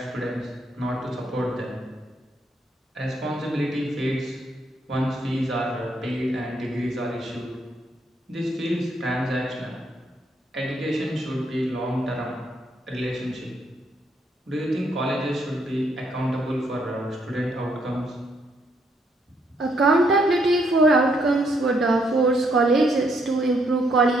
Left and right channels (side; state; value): both; normal; correlation 0.72